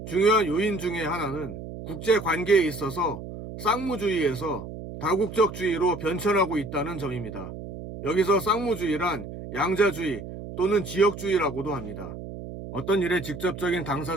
중요한 요인 중에 하나는 국제관계에 있어서 쌍무주의에서 다국적주의로 변천하고 있다는 점입니다. 여기서 쌍무주의란 양자주의 또는 지역주의라고도 합니다. 어떤 일에 직접적인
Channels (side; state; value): right; noise; hum, 10 dB below the sound